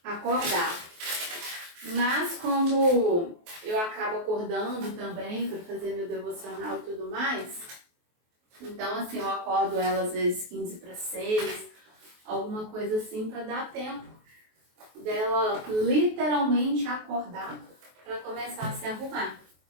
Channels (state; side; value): late; left; 23 ms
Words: acordar. Mas como eu acabo acordando também para fazer meu devocional e tudo mais, então assim, eu acordo ela às vezes 15:45, alguma coisa assim, para dar tempo dela literalmente acordar para começar a se arrumar.